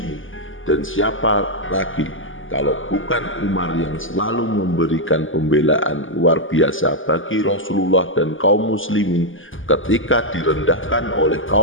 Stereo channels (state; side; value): late; right; 0.58 ms